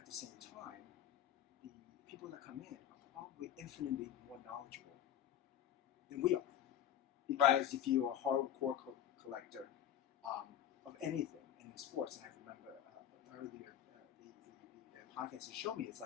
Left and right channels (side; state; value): right; quieter; 10.6 dB